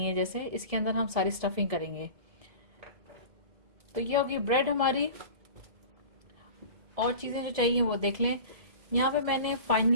है, जैसे इसके अंदर हम सारी स्टफिंग करेंगे। तो ये होगी ब्रेड हमारी। और चीजें जो चाहिए वो देख लें। यहाँ पे मैंने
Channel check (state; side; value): late; left; 1.7 ms